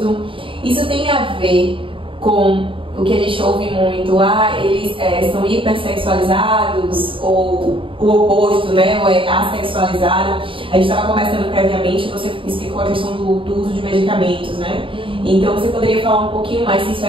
Isso tem a ver com o que a gente ouve muito, eles são hipersexualizados, ou o oposto, né, ou assexualizado. A gente estava conversando previamente, você explicou a questão do uso de medicamentos, né? Então você poderia falar um pouquinho mais se isso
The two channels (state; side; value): late; left; 0.25 ms